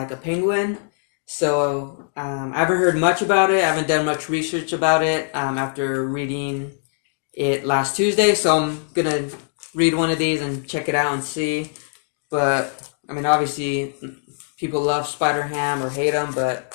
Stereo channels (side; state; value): right; silent; digital silence